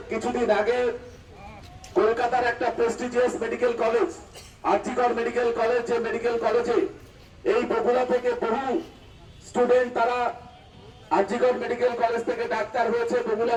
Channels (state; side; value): identical; both; correlation 1.00